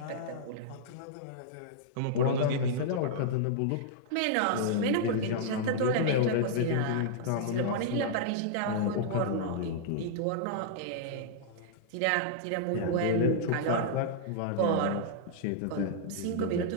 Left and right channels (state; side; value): different; both; correlation -0.02